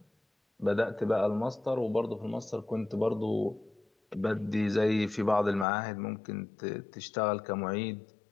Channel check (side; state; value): right; drops out; at 5.7 s